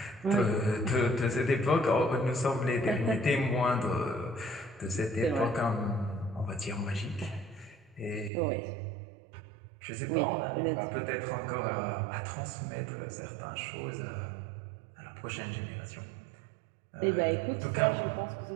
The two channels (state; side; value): drops out; left; at 8.3 s